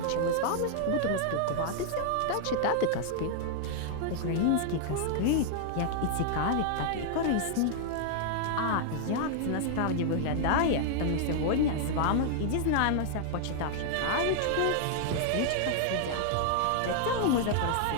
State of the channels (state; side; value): different; both; correlation -0.01